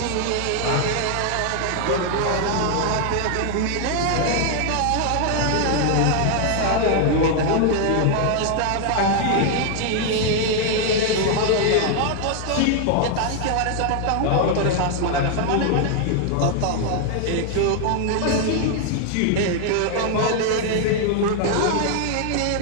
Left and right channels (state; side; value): different; both; correlation 0.00